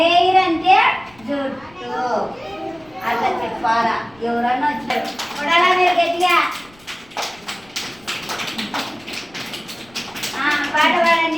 అంటే జుట్టు. అట్లా చెప్పాలా. ఎవరన్నా వచ్చారు చూడాలా మీరు గట్టిగా పాట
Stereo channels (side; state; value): left; noise; rumble, 28 dB below the sound